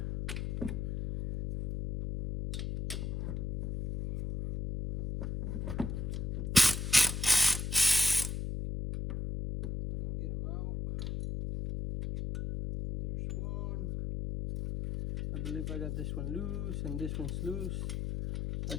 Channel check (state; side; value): noise; left; hum, 3 dB below the sound